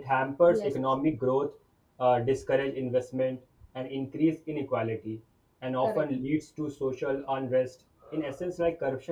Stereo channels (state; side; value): identical; both; correlation 1.00